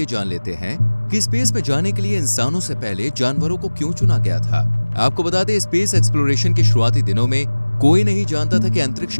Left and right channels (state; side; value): inverted; both; correlation -1.00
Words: जान लेते हैं कि स्पेस में जाने के लिए इंसानों से पहले जानवरों को क्यों चुना गया था। आपको बता दें, स्पेस एक्सप्लोरेशन के शुरुआती दिनों में कोई नहीं जानता था कि अंतरिक्ष